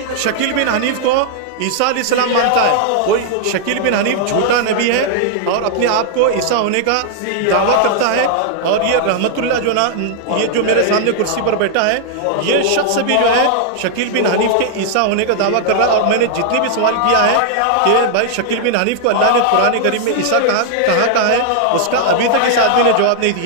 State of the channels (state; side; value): different; both; correlation -0.01